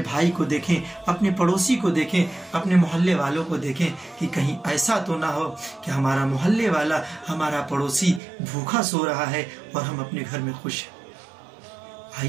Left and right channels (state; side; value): drops out; left; at 8.2 s